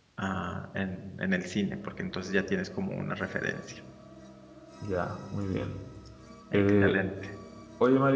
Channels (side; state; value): both; identical; correlation 1.00